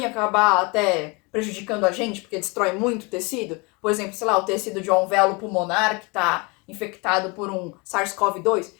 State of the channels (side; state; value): right; quieter; 28.6 dB